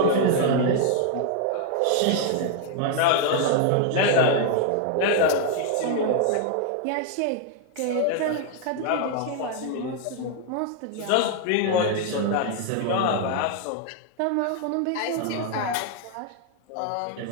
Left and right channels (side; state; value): both; different; correlation 0.00